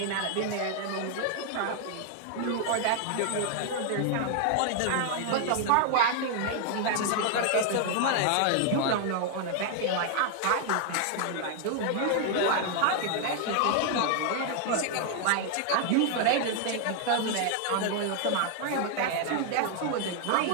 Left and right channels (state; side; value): different; both; correlation 0.00